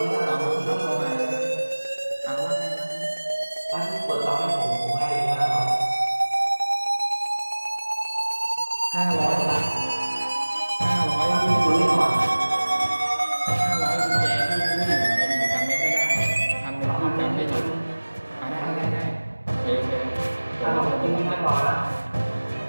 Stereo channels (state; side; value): inverted; both; correlation -1.00